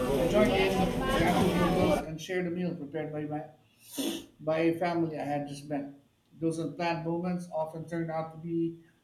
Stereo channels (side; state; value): both; identical; correlation 1.00